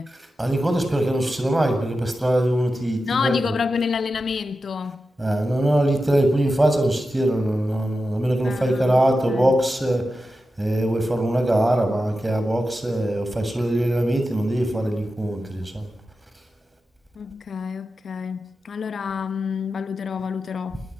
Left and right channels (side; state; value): both; normal; correlation 0.91